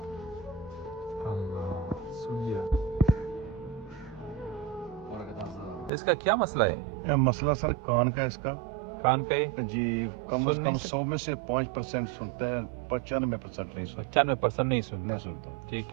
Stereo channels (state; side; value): drops out; left; at 5.9 s